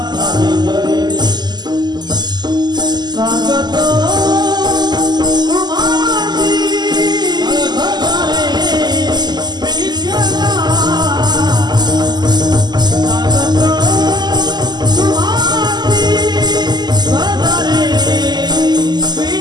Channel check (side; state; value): left; late; 0.21 ms